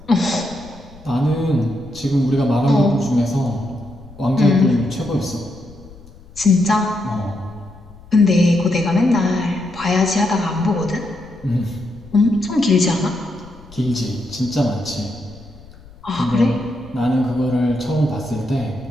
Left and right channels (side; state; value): left; noise; rumble, 21 dB below the sound